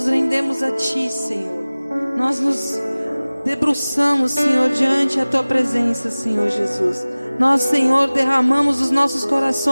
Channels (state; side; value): inverted; both; correlation -0.99